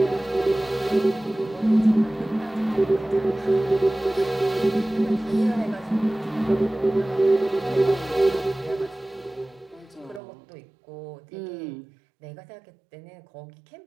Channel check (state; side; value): drops out; left; at 10.2 s